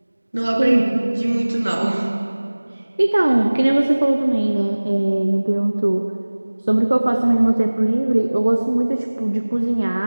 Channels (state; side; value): inverted; both; correlation -1.00